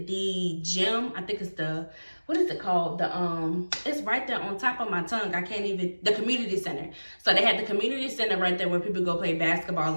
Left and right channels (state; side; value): inverted; both; correlation -1.00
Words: gym, I think it's what is it called? It's right there on top of my tongue. I can't even, the community center. So they had the community center right there where people go play basketball